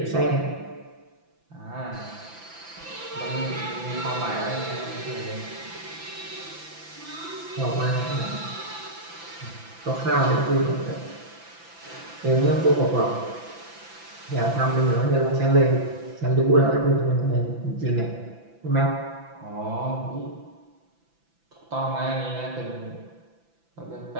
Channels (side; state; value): left; late; 5.9 ms